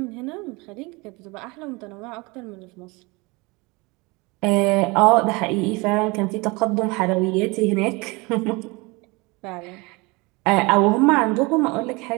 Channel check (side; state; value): left; quieter; 25.7 dB